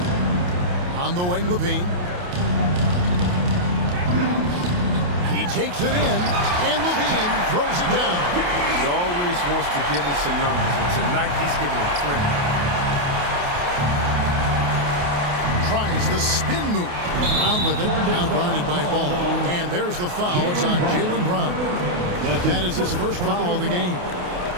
On the wing, Levine. He takes it in, and Levine throws it down. He always wants to give him some numbers, and tonight he's giving him plenty. Tries the spin move. Brown with it, now guarded by Ball. And there's the foul. It's on Jaylen Brown. That is his first foul of the game.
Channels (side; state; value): left; late; 28 ms